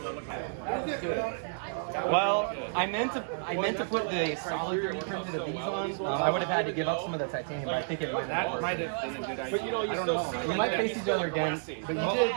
that looks Well, I meant to put the solid 3D printed of these on. I would have had to give up some of the titanium, but I think it might have. That might have been a good idea. But you know, I don't know. We might face each other again, but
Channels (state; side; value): silent; left; 56 dB below the other